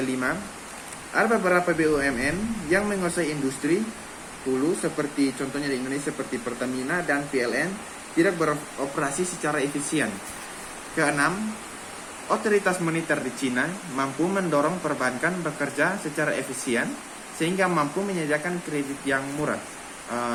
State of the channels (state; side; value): identical; both; correlation 1.00